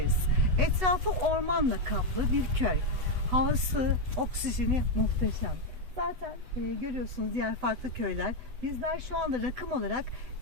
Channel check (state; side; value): late; left; 8.0 ms